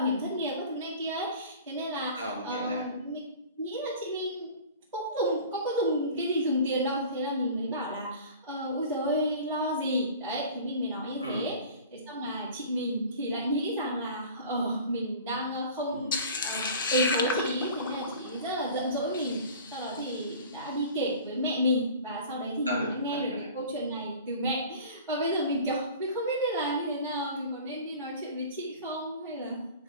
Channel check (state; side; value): inverted; both; correlation -0.41